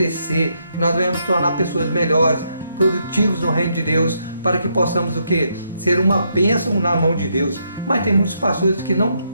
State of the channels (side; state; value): both; inverted; correlation -0.77